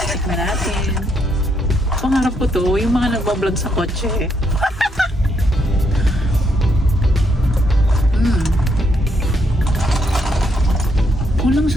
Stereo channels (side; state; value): both; normal; correlation 0.75